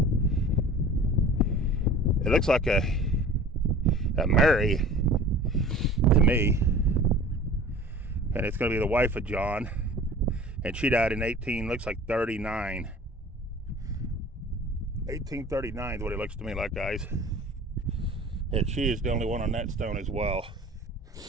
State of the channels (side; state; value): both; normal; correlation 0.42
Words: it looks like a Mary to me, and it's going to be the wife of John, and she died in 1839. 1839 is what it looks to me like, guys, and she is the only one on that stone as well.